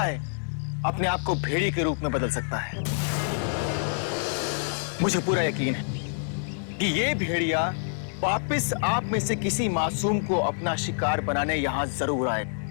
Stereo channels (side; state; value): right; silent; 57 dB below the other